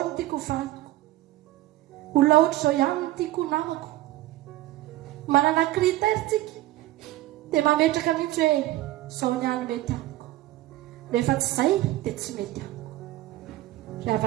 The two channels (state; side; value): quieter; left; 16.4 dB